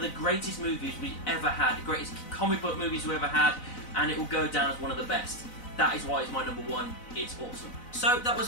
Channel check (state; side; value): late; right; 4.0 ms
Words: the greatest movies we ever had, the greatest comic book movies we ever had, and it will go down as one of the best. That is why it's my number 1. It's awesome. So that